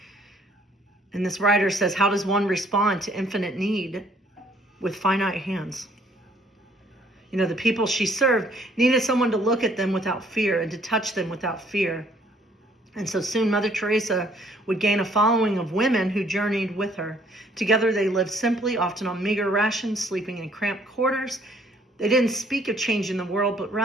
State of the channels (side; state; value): both; normal; correlation 0.62